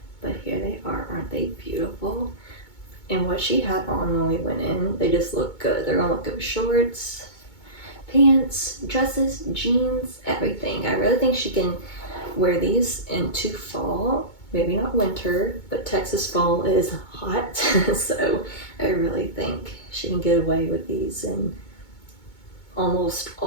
But here they are. Aren't they beautiful? And what she had on when we went in, they just look good. They're gonna look good with shorts, pants, dresses, jeans, everything. I really think she can wear these into fall. Maybe not winter, but Texas fall is hot. So I really think she can get away with these in almost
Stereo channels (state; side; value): late; right; 2.2 ms